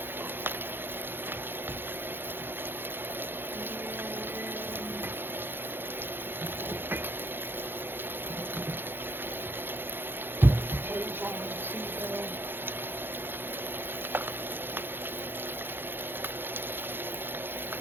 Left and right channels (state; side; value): late; left; 0.10 ms